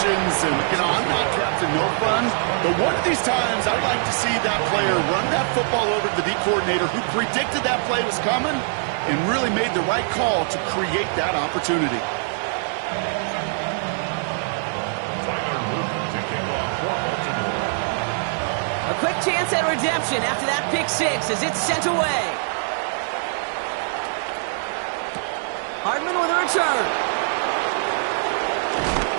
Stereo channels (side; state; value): left; silent; digital silence